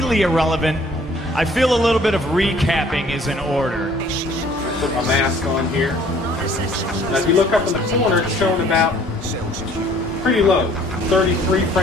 irrelevant, I feel a little bit of recapping is in order. Put my mask on here. Now if you look up in the corner, it's showing about pretty low. 33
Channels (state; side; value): normal; both; correlation 0.56